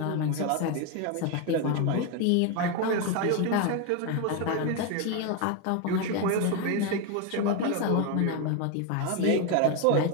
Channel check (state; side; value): different; both; correlation 0.02